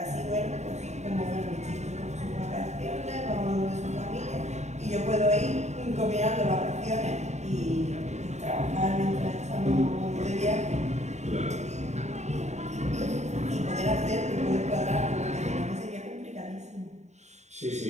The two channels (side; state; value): left; late; 0.33 ms